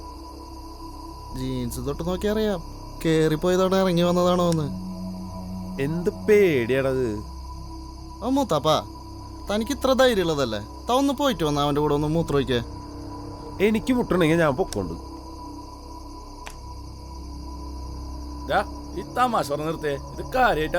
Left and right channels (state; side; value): identical; both; correlation 1.00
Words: ജീൻസ് തൊട്ട് നോക്കി അറിയാം കേറിപ്പോയതോടെ ഇറങ്ങി വന്നതാണോ എന്ന്. എന്ത് പേടിയാണത്? ആ മൂത്താപ്പാ, തനിക്ക് ഇത്ര ധൈര്യം ഉള്ളതല്ലേ? താ ഒന്ന് പോയിട്ട് വന്ന അവൻ്റെ കൂടെ ഒന്ന് മൂത്രം ഒഴിക്കേ. എനിക്ക് മുട്ടണമെങ്കിൽ ഞാൻ പൊക്കോണ്ട്. ഈ തമാശ പറഞ്ഞ് നിർത്തേ, ഇത്